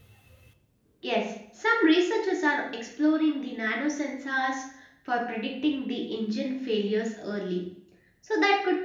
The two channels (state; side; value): identical; both; correlation 1.00